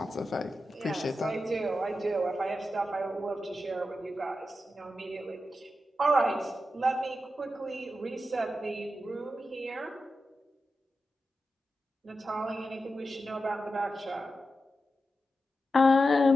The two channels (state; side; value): normal; both; correlation 0.90